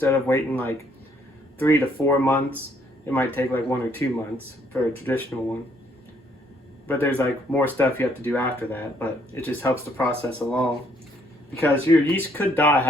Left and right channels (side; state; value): both; normal; correlation 0.67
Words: of waiting like 3 to 4 months, it might take like 1 or 2 months for a traditional one. But there's like more stuff you have to do after that, but it just helps the process along. Because your yeast could die